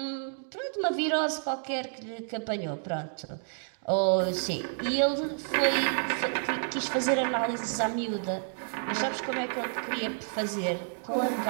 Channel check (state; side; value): silent; left; 58 dB below the other